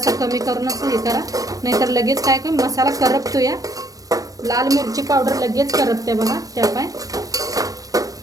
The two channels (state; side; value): late; left; 0.17 ms